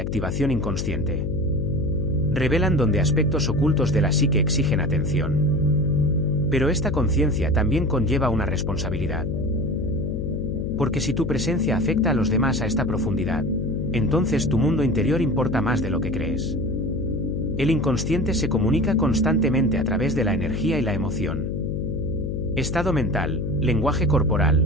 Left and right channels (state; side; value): noise; left; hum, 2 dB below the sound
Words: inconsciente. Revelan donde aspectos ocultos de la psique exigen atención. Pero esta conciencia también conlleva una responsabilidad. Porque si tu presencia afecta a los demás a esta profundidad, entonces tu mundo interior importa más de lo que crees. El inconsciente se comunica constantemente a través de la energía y la emoción. Estado mental, lenguaje corporal,